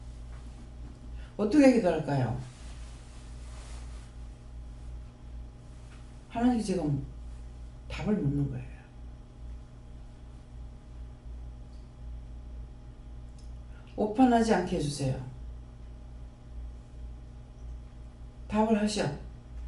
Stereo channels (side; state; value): both; identical; correlation 1.00